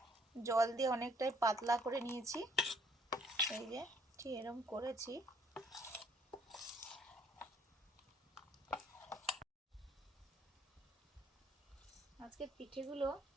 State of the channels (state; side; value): normal; both; correlation 0.62